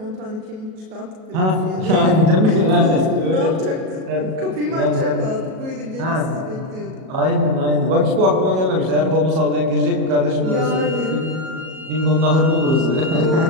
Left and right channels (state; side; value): late; left; 37 ms